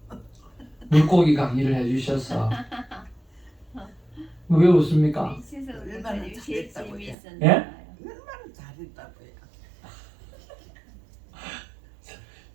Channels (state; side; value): drops out; left; at 7.2 s